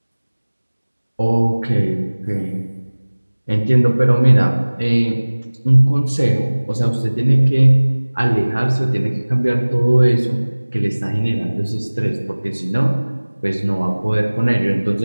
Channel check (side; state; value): both; inverted; correlation -1.00